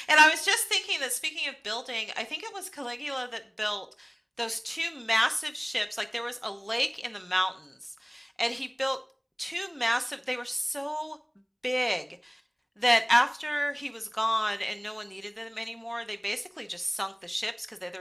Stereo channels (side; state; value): both; identical; correlation 1.00